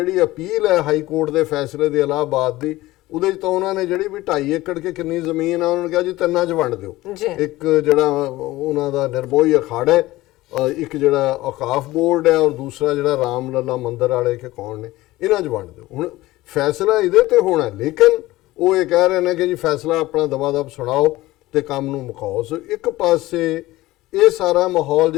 ਅਪੀਲ ਹੈ ਹਾਈ ਕੋਰਟ ਦੇ ਫੈਸਲੇ ਦੇ ਇਲਾਹਾਬਾਦ ਦੀ, ਉਹਦੇ 'ਚ ਤਾਂ ਉਹਨਾਂ ਨੇ ਜਿਹੜੀ ਵੀ 2.5 ਏਕੜ ਕੇ ਕਿੰਨੀ ਜ਼ਮੀਨ ਆ ਉਹਨਾਂ ਨੇ ਕਿਹਾ ਜੀ 3 'ਚ ਵੰਡ ਦਿਓ। ਇੱਕ ਜਿਹੜਾ ਉਹਨਾਂ ਦਾ ਨਿਰਮੋਹੀ ਅਖਾੜਾ ਹੈ, ਇੱਕ ਜਿਹੜਾ ਔਕਾਫ ਬੋਰਡ ਹੈ, ਔਰ ਦੂਸਰਾ ਜਿਹੜਾ ਰਾਮ ਲੱਲਾ ਮੰਦਿਰ ਵਾਲੇ ਕਿ ਕੌਣ ਨੇ, ਇਹਨਾਂ 'ਚ ਵੰਡ ਦਿਓ। ਹੁਣ ਫੈਸਲਾ ਇਹਦੇ ਤੇ ਹੋਣਾ, ਲੇਕਿਨ ਉਹ ਇਹ ਕਹਿ ਰਹੇ ਨੇ ਕਿ ਜੀ ਫੈਸਲਾ ਆਪਣਾ ਦਬਾ-ਦਬ ਸੁਣਾਓ ਤੇ ਕੰਮ ਨੂੰ ਮੁਕਾਓ। ਸੋ ਇੱਕ ਪਾਸੇ ਇਹ ਸਾਰਾ ਮਾਹੌਲ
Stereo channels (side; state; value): right; quieter; 17.9 dB